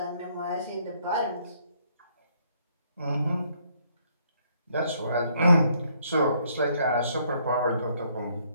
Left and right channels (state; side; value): inverted; both; correlation -0.68